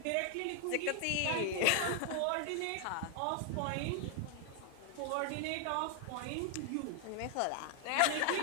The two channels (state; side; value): different; both; correlation 0.00